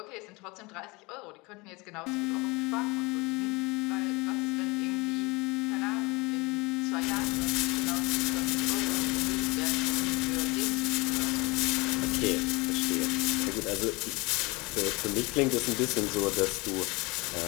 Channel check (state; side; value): quieter; right; 25.1 dB